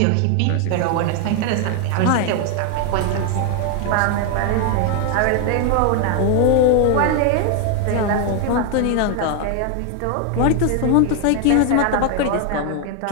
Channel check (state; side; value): different; both; correlation 0.00